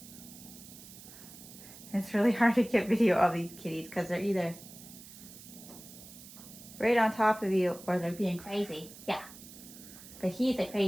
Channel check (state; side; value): noise; right; hiss, 17 dB below the sound